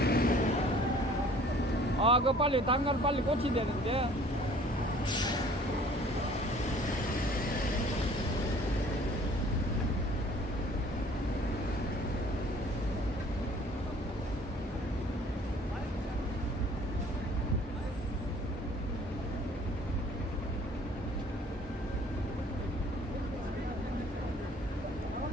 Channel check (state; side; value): normal; both; correlation 0.53